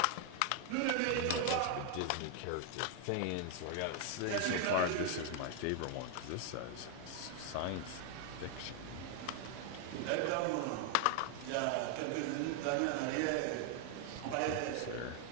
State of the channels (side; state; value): both; different; correlation 0.00